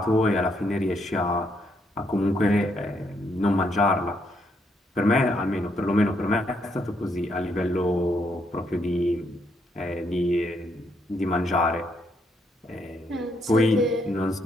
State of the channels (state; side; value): normal; both; correlation 0.75